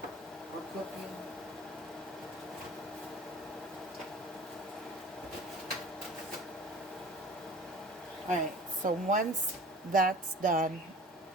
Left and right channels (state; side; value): normal; both; correlation 0.42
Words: or cooking. Alright, so once that's done,